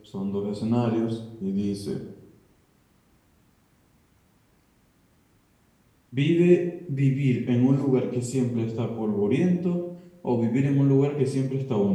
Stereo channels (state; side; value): identical; both; correlation 1.00